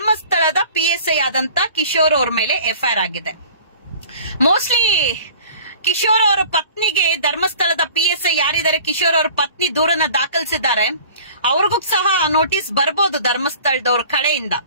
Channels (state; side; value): inverted; both; correlation -0.46